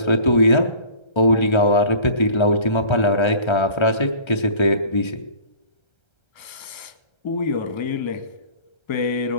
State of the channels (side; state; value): right; late; 1.3 ms